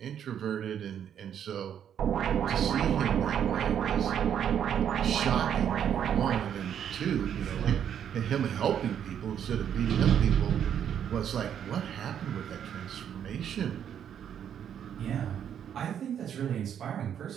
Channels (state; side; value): quieter; left; 9.1 dB